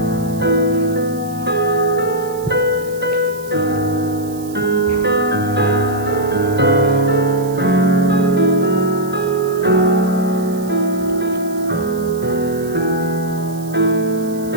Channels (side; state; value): right; noise; hiss, 19 dB below the sound